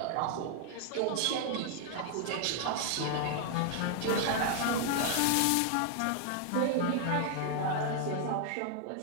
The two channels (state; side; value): different; both; correlation 0.00